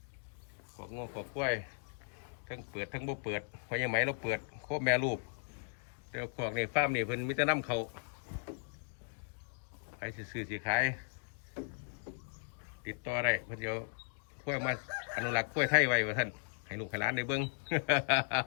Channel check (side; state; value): right; silent; digital silence